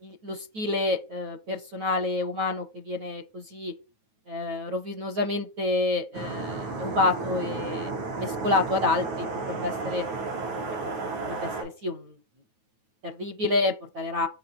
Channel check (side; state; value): left; late; 9.3 ms